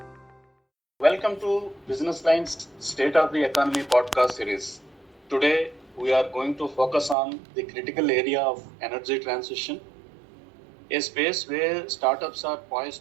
Welcome to Business Line's State of the Economy podcast series. Today, we are going to focus on the critical area of energy transition, a space where startups are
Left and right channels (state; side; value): drops out; left; at 7.2 s